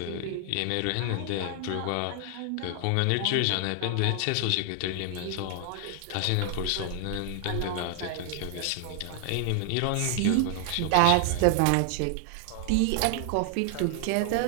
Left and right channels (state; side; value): different; both; correlation 0.00